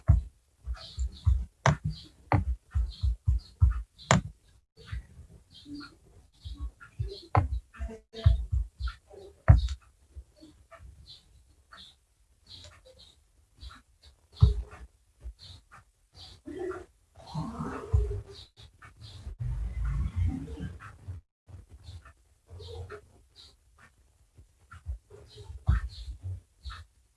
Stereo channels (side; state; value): both; identical; correlation 1.00